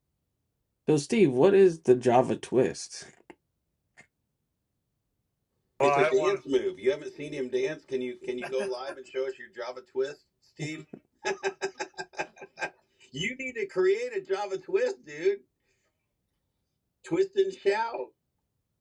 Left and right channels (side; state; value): both; identical; correlation 1.00